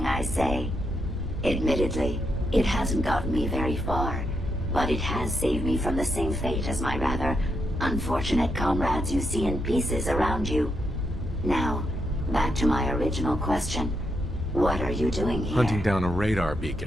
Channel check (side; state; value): both; normal; correlation 0.81